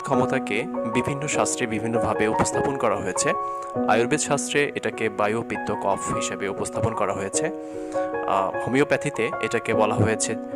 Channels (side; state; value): both; identical; correlation 1.00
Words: ক্ষমতাকে বিভিন্ন শাস্ত্রে বিভিন্নভাবে উপস্থাপন করা হয়েছে। আয়ুর্বেদ শাস্ত্রে এটাকে বায়ু পিত্ত কফ হিসেবে উপস্থাপন করা হয়েছে। হোমিওপ্যাথিতে এটাকে বলা হয়েছে